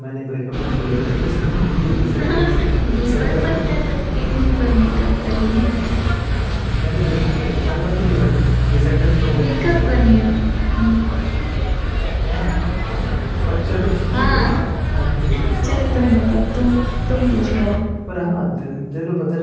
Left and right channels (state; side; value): identical; both; correlation 1.00